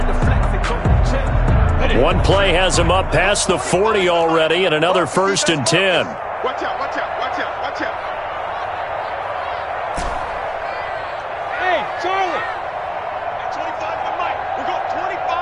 One play has him up past the 40 already, and another 1st and 10. Watch out, watch out, watch out, watch out. Hey, Charlie. 25 to the mic. We're going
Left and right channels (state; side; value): identical; both; correlation 1.00